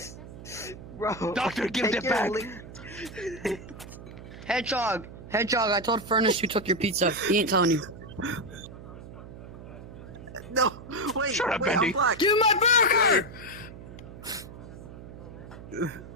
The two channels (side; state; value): right; noise; hum, 14 dB below the sound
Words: Bro, Doctor, give take it back. Hedgehog, I told Furnace you took your pizza. He ain't telling you. No, wait, Shut up, wait, Bendy. I'm black. Give me my burger!